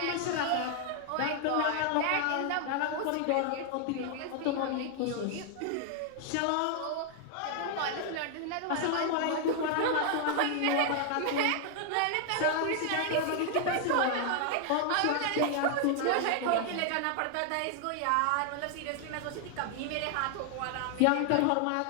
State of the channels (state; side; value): different; both; correlation 0.00